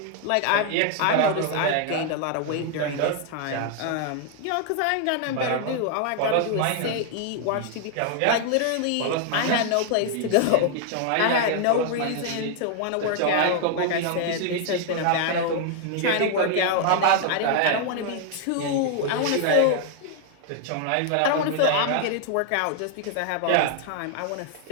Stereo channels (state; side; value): different; both; correlation 0.00